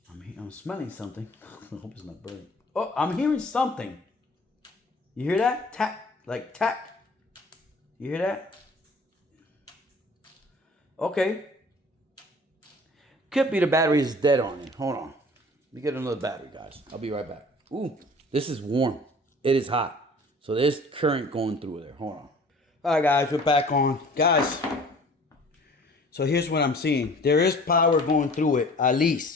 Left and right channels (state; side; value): normal; both; correlation 0.48